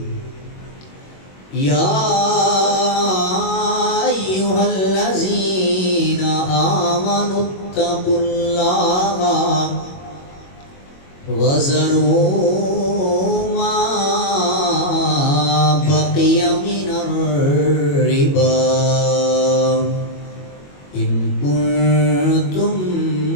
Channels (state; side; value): late; right; 21 ms